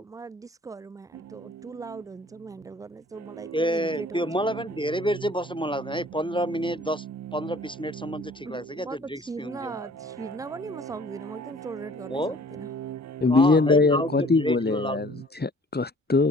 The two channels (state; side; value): normal; both; correlation 0.53